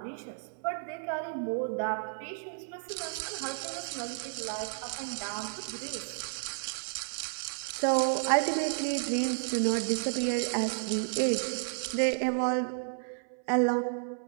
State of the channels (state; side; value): silent; left; 56 dB below the other